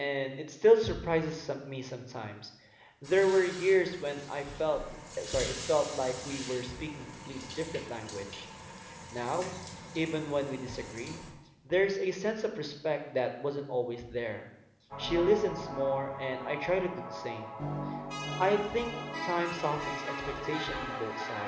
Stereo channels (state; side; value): identical; both; correlation 1.00